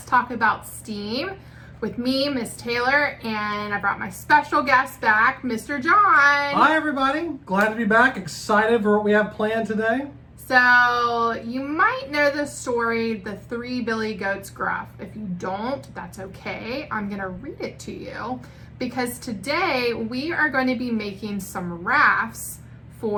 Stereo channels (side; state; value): both; identical; correlation 1.00